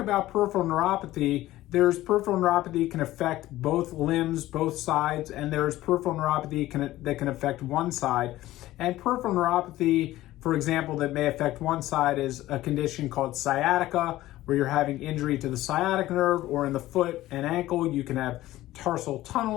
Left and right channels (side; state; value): right; quieter; 15.8 dB